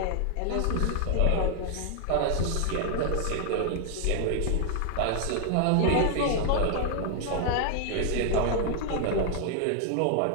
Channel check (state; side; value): different; both; correlation 0.00